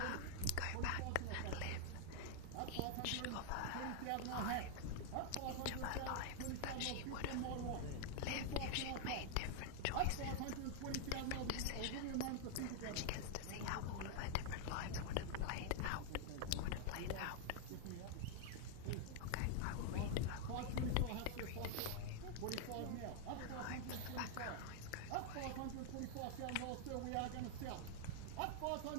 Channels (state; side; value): different; both; correlation 0.00